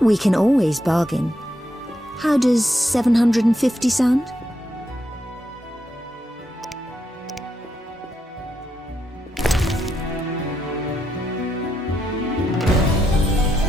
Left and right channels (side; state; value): both; normal; correlation 0.81